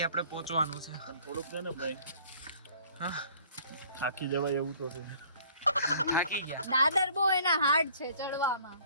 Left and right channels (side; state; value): both; inverted; correlation -0.55